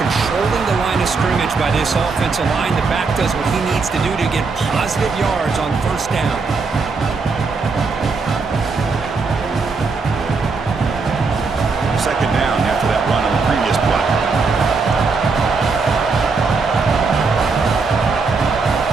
controlling the line of scrimmage by this offensive line. The back does what he needs to do to get positive yards on first down. Second down after that run on the previous play.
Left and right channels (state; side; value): quieter; left; 4.4 dB